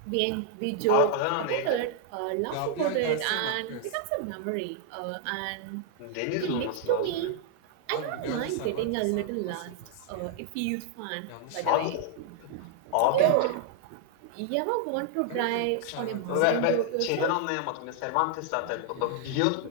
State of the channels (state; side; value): different; both; correlation 0.00